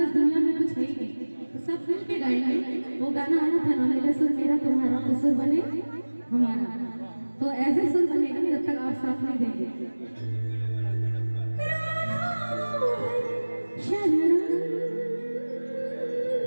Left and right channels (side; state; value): both; inverted; correlation -1.00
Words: इस दुनिया में कुछ है ही नहीं, तो सब मिल के गाएंगे। वो गाना आया था ना, मेरा सुर मेरा तुम्हारा तो सुर बने हमारा, तो ऐसे सुर बनेगा जब तक आप साथ नहीं देंगे।